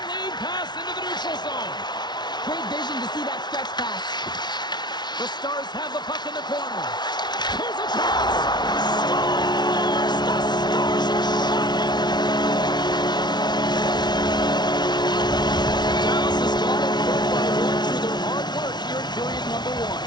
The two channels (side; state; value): right; late; 0.20 ms